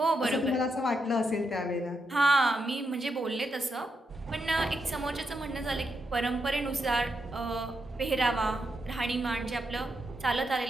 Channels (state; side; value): normal; both; correlation 0.82